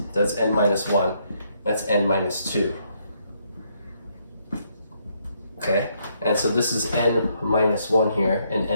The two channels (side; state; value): both; inverted; correlation -0.73